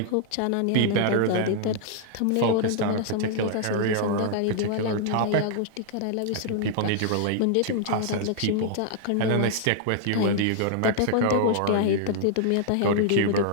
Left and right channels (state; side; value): different; both; correlation -0.01